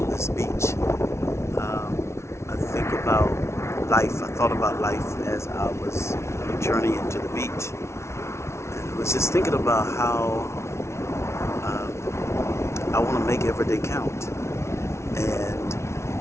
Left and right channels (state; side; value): late; right; 0.13 ms